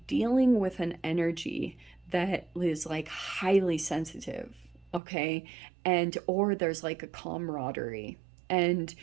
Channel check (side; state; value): left; drops out; at 5.0 s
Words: with an energy that is like highly sensitive, okay? And or there's like a camaraderie, and